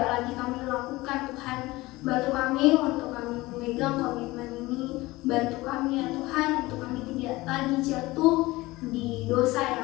lagi kami lakukan. Tuhan, bantu kami untuk kami memegang komitmen ini. Bantu kami ya Tuhan, untuk kami tidak lagi jatuh di dosa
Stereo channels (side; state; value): right; quieter; 20.1 dB